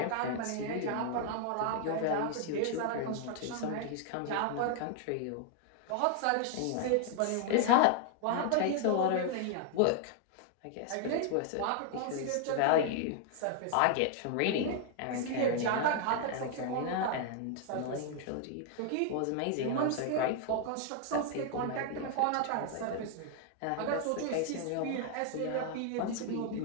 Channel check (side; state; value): both; different; correlation 0.00